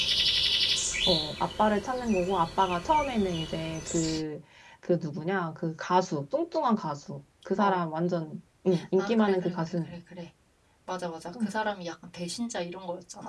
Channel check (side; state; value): both; identical; correlation 1.00